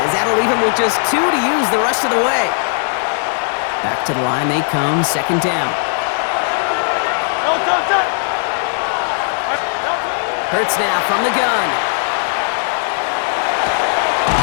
As that'll leave him with just 2 to use the rest of the way. Back to the line they come, second down. Hurts now from the gun.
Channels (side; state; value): right; silent; 68 dB below the other